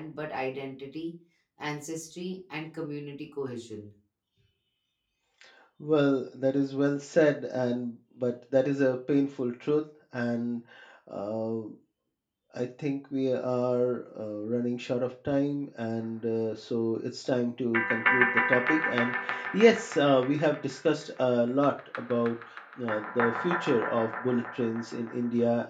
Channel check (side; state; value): both; identical; correlation 1.00